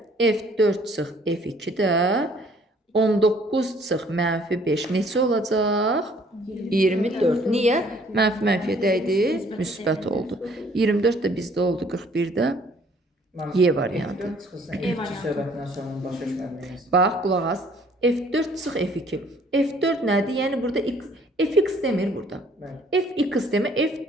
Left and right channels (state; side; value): normal; both; correlation 0.59